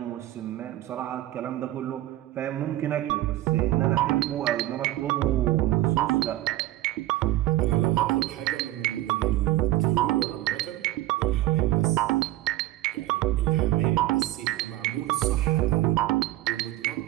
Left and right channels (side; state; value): left; quieter; 15.5 dB